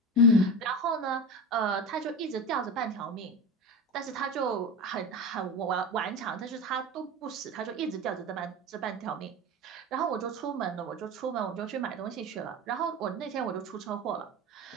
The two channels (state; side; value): normal; both; correlation 0.25